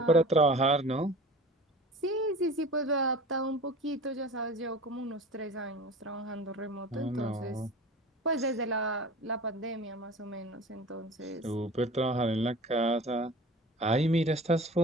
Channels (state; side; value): normal; both; correlation 0.38